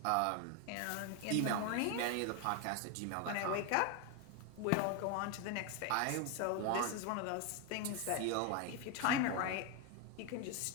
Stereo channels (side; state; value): both; different; correlation 0.01